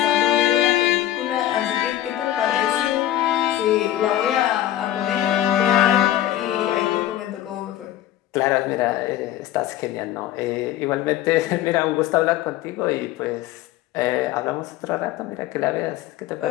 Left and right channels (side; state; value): right; quieter; 12.9 dB